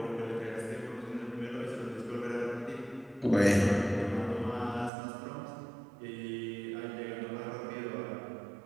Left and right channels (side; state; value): left; drops out; at 4.9 s